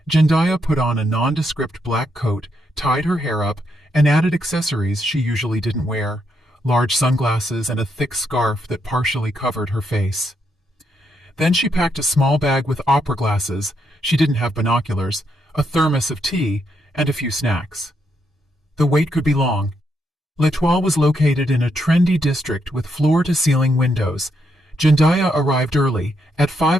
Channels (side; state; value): both; normal; correlation 0.78